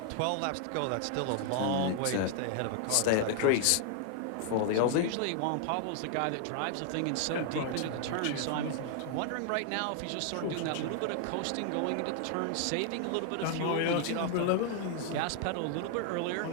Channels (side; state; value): both; different; correlation 0.00